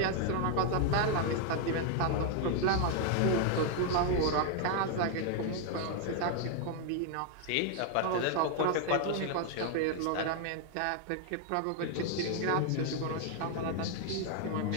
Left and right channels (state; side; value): different; both; correlation 0.00